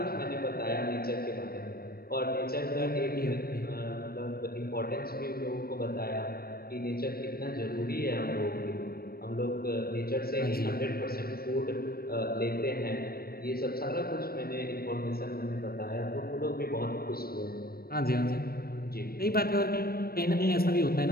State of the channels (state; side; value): late; right; 0.44 ms